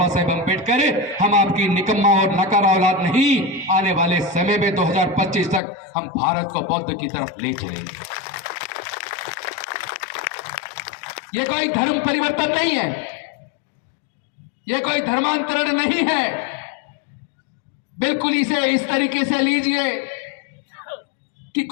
साहेब अंबेडकर, हम आपकी निकम्मा और नकारा औलाद नहीं, आने वाले समय में 2025 तक हम भारत को बौद्ध की तरफ ले चलेंगे। यह कोई धर्म परिवर्तन नहीं है, यह कोई धर्मांतरण नहीं है। बिल्कुल इसे इस तरीके से लीजिए कि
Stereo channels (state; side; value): drops out; right; at 5.6 s